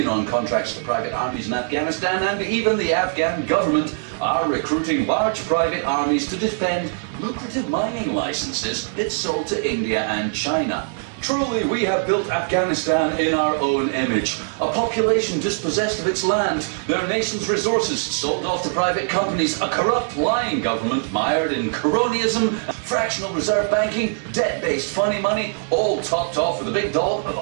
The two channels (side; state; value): left; silent; 64 dB below the other